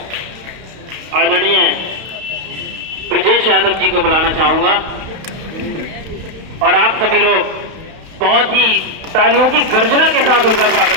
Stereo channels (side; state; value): left; late; 31 ms